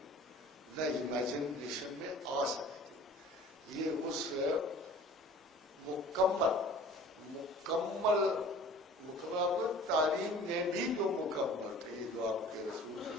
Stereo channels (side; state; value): both; normal; correlation 0.46